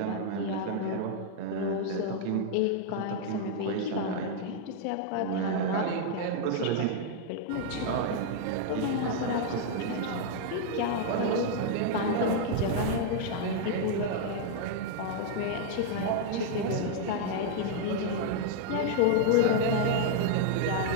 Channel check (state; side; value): different; both; correlation -0.01